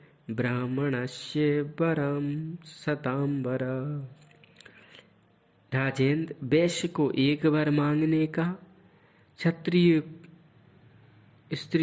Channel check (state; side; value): identical; both; correlation 1.00